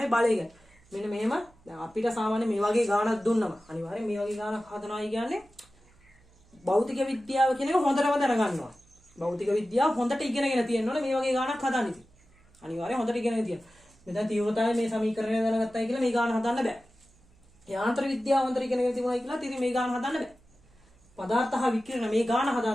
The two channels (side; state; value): right; noise; hum, 30 dB below the sound